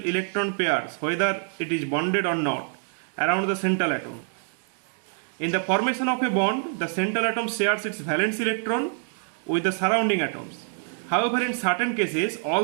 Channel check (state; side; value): silent; left; 61 dB below the other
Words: pairs, whether it is bonded or not, around the central atom. In the formation of a bond, the central atom shares its valence electron with the surrounding atoms. However, in certain cases,